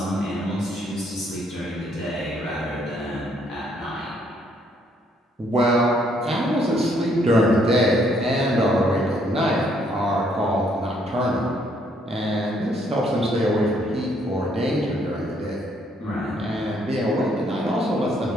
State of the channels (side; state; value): both; normal; correlation 0.68